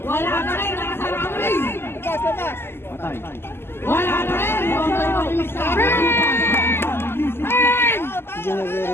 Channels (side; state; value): right; late; 0.12 ms